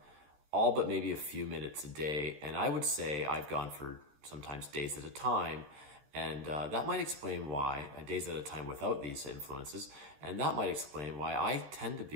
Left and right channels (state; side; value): late; left; 14 ms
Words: but maybe a few minutes a day. And I would say I've gone for sometimes days at a time, and that might explain why days at a time without these influences, and that might explain why I tend to